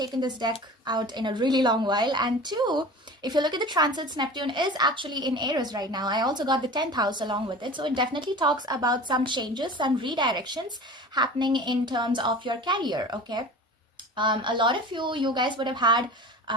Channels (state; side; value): normal; both; correlation 0.37